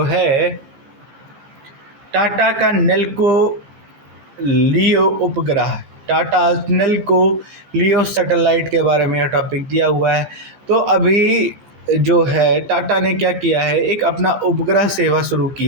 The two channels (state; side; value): late; left; 15 ms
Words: है टाटा का नेल्को लियो उपग्रह, टाटा नेल्को लियो सैटेलाइट के बारे में यह टॉपिक दिया हुआ है। तो अभी जो है टाटा ने क्या किया है, एक अपना उपग्रह सेवा शुरू